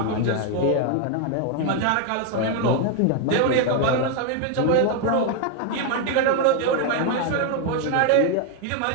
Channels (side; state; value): both; different; correlation 0.01